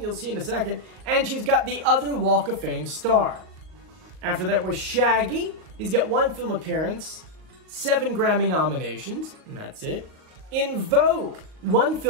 see in a second. And she's got the other Walk of Fame star. After that was Shaggy. He's got 1 film appearance, 7 Grammy nominations, and that's it. In Vogue, 1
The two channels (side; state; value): left; late; 38 ms